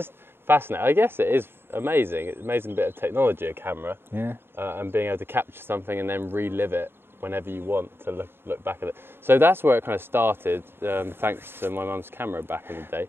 fascinating. I guess it is amazing. It's an amazing bit of technology, a camera, and being able to capture something and then relive it whenever you want to look back at it. So that's where it kind of started, thanks to my mum's camera back in the day.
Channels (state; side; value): late; left; 0.11 ms